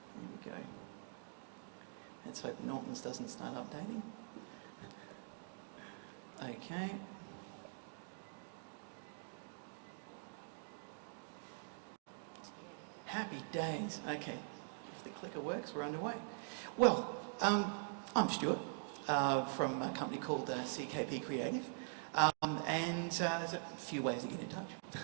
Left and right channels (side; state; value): left; silent; digital silence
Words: we go. Let's hope Norton's doesn't start updating. Okay. Happy days. Okay. If the clicker works, we're underway. Well, I'm Stuart from a company called CKP Creative. And there's a few ways to get in touch.